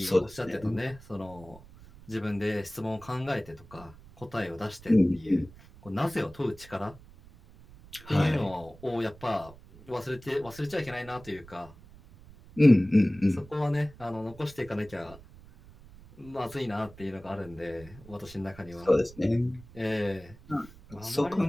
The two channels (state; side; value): noise; right; rumble, 21 dB below the sound